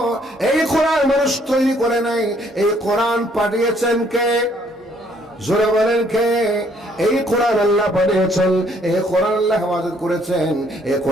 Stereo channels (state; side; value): normal; both; correlation 0.65